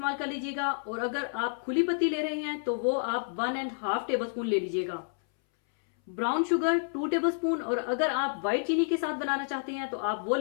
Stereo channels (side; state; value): right; silent; 58 dB below the other